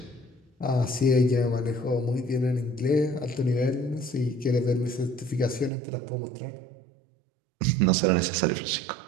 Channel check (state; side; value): drops out; left; at 5.7 s